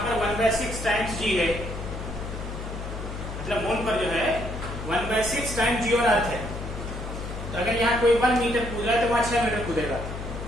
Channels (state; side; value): noise; left; hum, 8 dB below the sound